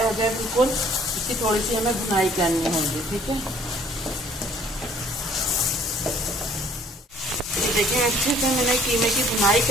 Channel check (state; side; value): normal; both; correlation 0.57